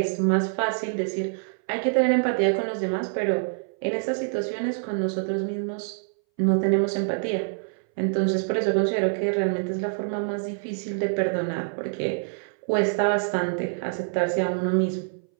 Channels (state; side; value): silent; left; 60 dB below the other